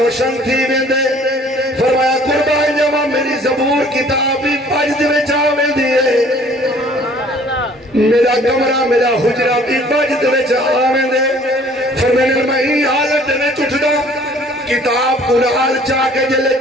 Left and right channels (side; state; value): both; normal; correlation 0.55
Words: تھی ویندے فرمایا قربان جمع میری زبور کتابی پجد میں چاوے دیئے میرا کمرہ میرا حجرہ بھی پجد میں چاوے دے فرمایا میں ہی حالت میں چٹھنا کتاب قرآن چاہ کے جلے